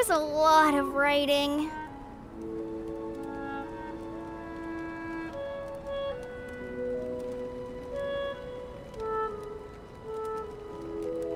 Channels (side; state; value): both; identical; correlation 1.00